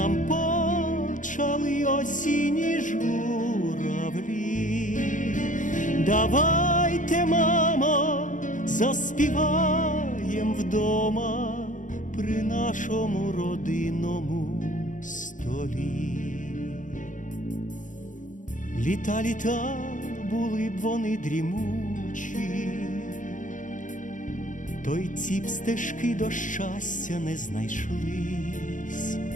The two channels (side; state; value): right; late; 0.37 ms